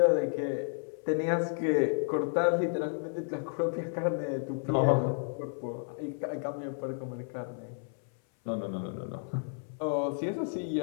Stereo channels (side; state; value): right; silent; 57 dB below the other